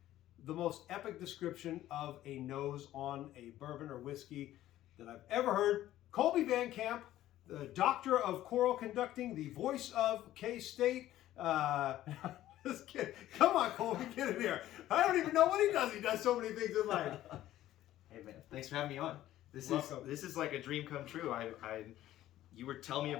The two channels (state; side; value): quieter; right; 13.8 dB